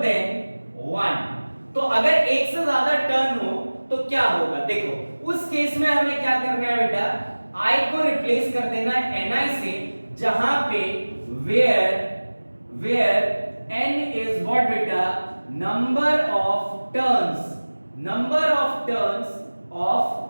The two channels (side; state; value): both; inverted; correlation -1.00